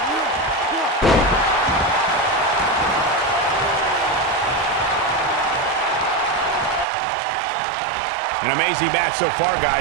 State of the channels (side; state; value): left; drops out; at 6.9 s